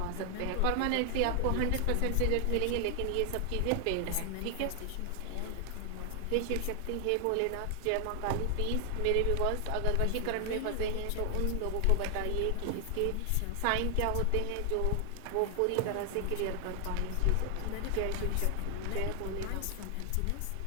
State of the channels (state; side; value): different; both; correlation 0.00